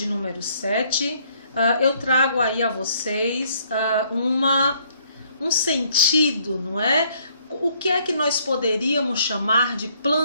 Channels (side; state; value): both; inverted; correlation -0.65